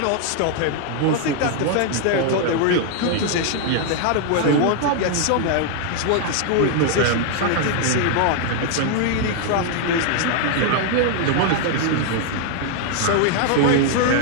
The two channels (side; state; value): both; different; correlation 0.00